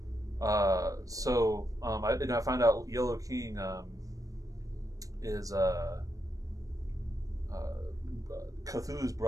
I found out Yellow King is Cthulhu's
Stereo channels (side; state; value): left; late; 0.16 ms